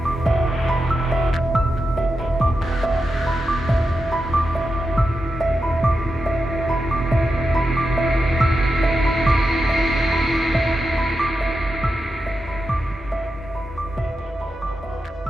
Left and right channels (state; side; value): normal; both; correlation 0.88